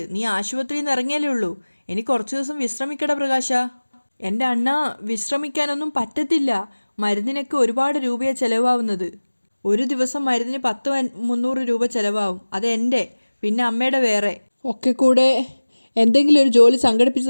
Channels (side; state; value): both; inverted; correlation -1.00